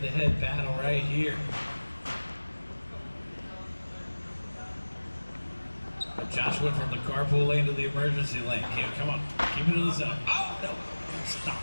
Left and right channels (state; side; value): inverted; both; correlation -1.00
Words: battle right here. Josh went from the carpool lane to the emergency lane. Okay, come on, keep it to the center. Oh, no, stop.